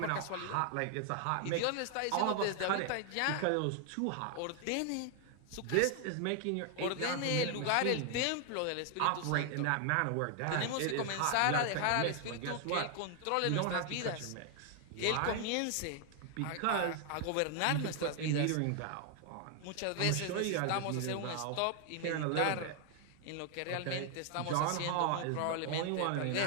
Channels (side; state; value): both; different; correlation 0.00